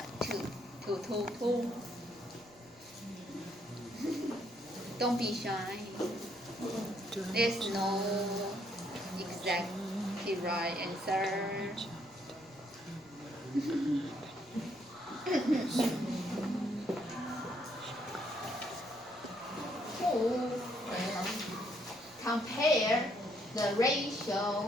Don't be shy. There's no exactly right answer. Who compare the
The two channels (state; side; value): noise; right; rumble, 29 dB below the sound